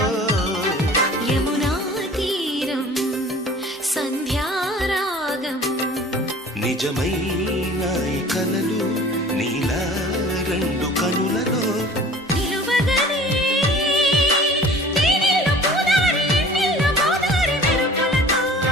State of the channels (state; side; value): normal; both; correlation 0.45